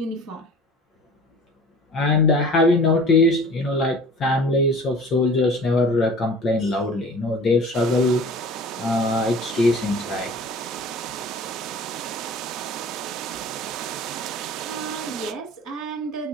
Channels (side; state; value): both; normal; correlation 0.44